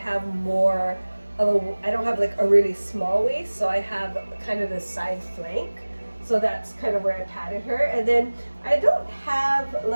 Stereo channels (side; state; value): both; inverted; correlation -1.00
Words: more of I don't have like a really small waist, so I have kind of the side flank. So that's kind of where I patted her. And then I don't have